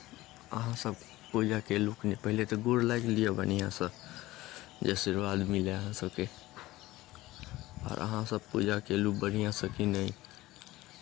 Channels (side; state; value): right; quieter; 17.8 dB